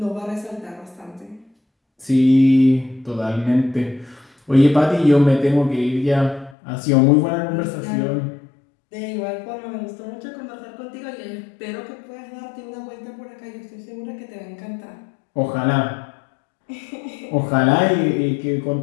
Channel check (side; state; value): right; drops out; at 6.6 s